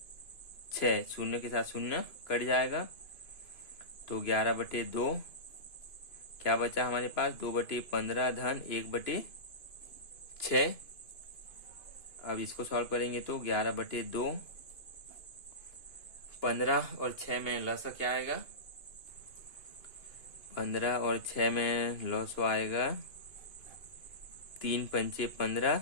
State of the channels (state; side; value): late; right; 2.5 ms